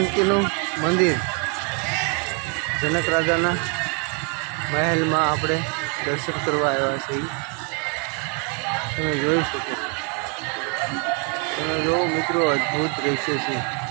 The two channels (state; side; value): quieter; left; 37.1 dB